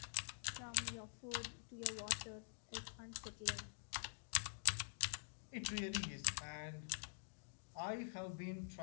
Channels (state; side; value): silent; right; digital silence